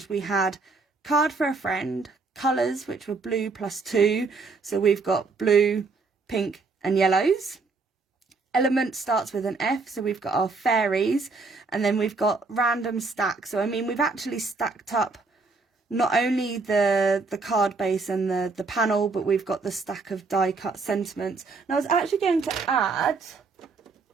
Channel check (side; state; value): left; quieter; 4.0 dB